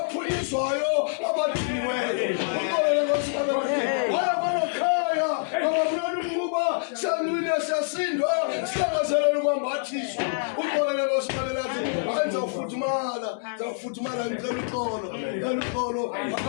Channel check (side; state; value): right; silent; digital silence